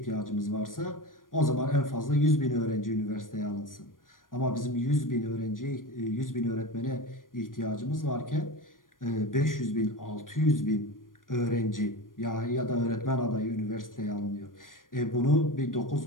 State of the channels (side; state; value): right; late; 0.90 ms